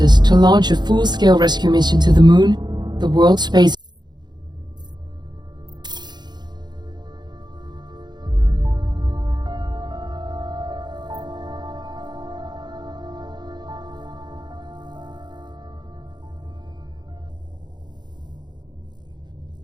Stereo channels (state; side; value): late; left; 0.21 ms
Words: to launch a full-scale rescue mission to the Moon, the World Space